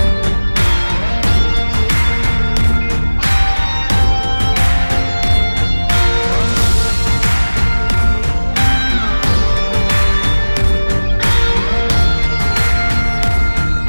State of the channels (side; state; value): both; inverted; correlation -1.00